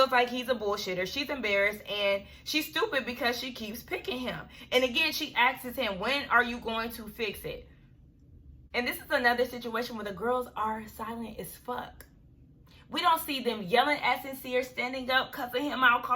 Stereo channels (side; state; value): both; identical; correlation 1.00